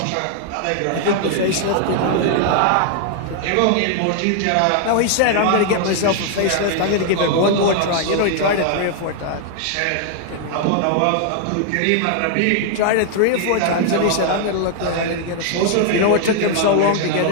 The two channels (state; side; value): different; both; correlation 0.00